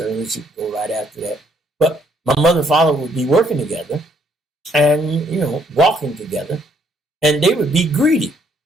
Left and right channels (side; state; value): both; normal; correlation 0.68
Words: he'd go right after that. But my mother and father would be working together and, walking together, and they would be greeted